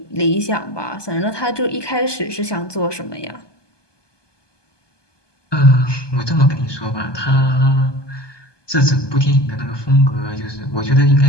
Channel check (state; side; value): late; right; 1.2 ms